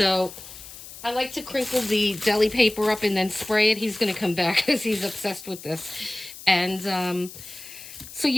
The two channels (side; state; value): left; noise; hiss, 15 dB below the sound